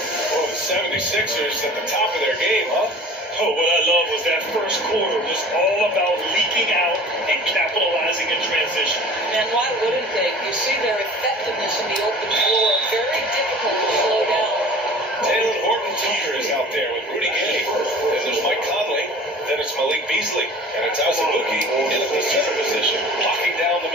Oh, the 76ers at the top of their game, huh? Oh, what I love was that first quarter was all about leaking out and capitalizing in transition. And why wouldn't they? You see their effectiveness in the open floor. Very difficult to slow down. Taylor Horton-Tucker is out there with Rudy Gay. Then there's Mike Conley. Then it's Malik Beasley. And it's Azubuike in at the center position, locking down the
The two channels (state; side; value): normal; both; correlation 0.44